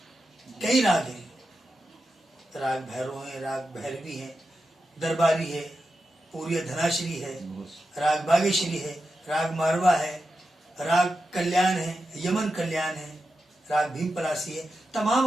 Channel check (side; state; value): both; normal; correlation 0.90